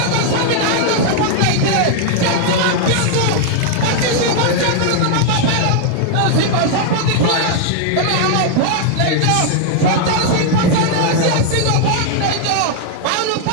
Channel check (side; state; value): both; different; correlation 0.00